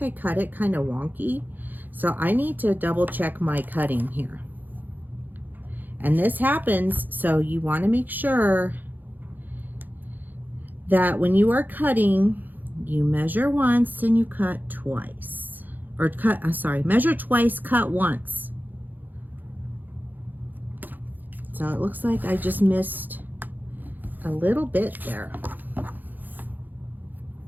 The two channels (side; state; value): left; late; 0.086 ms